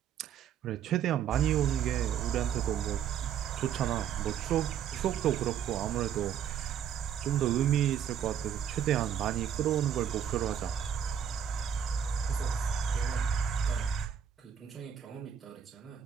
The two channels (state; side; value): quieter; left; 8.9 dB